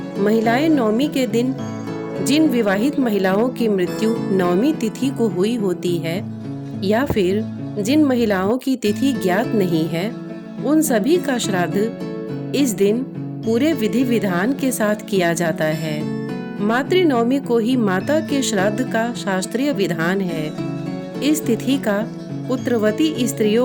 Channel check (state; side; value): identical; both; correlation 1.00